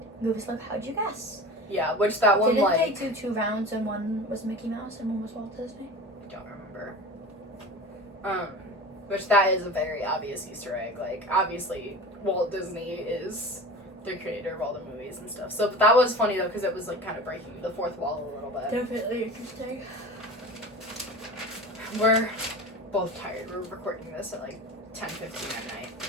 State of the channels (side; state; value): both; normal; correlation 0.34